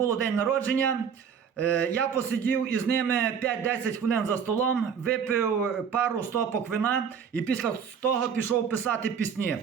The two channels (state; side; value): quieter; left; 7.1 dB